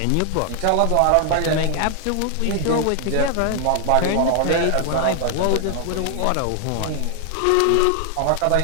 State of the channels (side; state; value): both; different; correlation 0.00